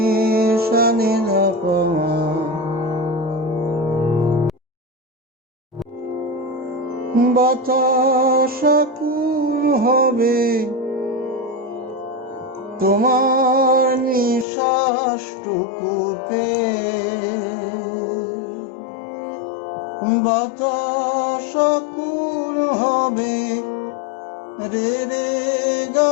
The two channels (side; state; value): right; drops out; at 14.5 s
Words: শানি ধপমা বাতাস আকুল হবে তোমার নিঃশ্বাসটুকু পেয়ে। বাতাস আকুল হবে রে রে